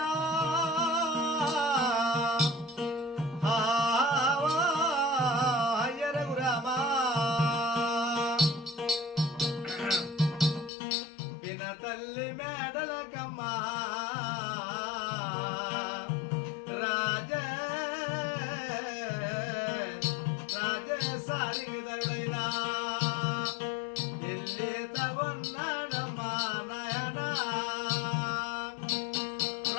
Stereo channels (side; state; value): right; drops out; at 10.7 s